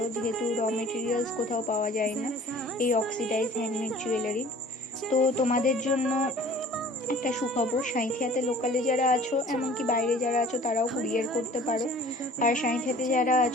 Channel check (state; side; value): normal; both; correlation 0.48